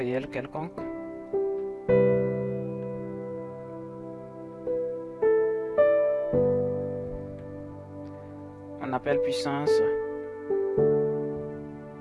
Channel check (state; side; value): identical; both; correlation 1.00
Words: quelconque, on appelle puissance